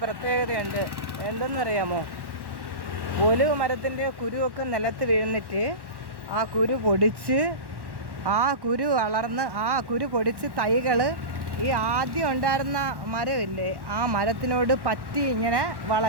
പ്രത്യേകതയുണ്ട്. എന്തെന്നറിയാമോ? ഒലിവ് മരത്തിൻ്റെ കുരുവൊക്കെ നിലത്ത് വീഴുന്നിട്ട് ആ കുരു പൊടിച്ച്, ആ കുരു വളർന്ന്, ആ കുരു പൊടിച്ച് തൈകൾ ഈ ആദ്യം ഉണ്ടായിരുന്ന മരമില്ലേ, ആ മരത്തിനോട് പറ്റി ഇങ്ങനെ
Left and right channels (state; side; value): late; left; 1.1 ms